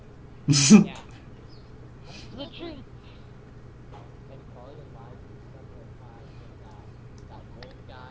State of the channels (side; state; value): both; identical; correlation 1.00